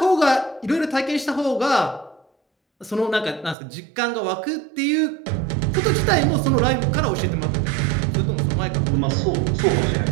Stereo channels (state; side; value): drops out; left; at 3.6 s